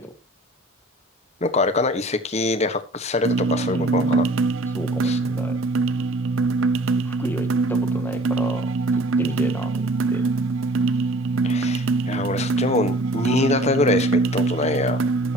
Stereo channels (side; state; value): both; normal; correlation 0.49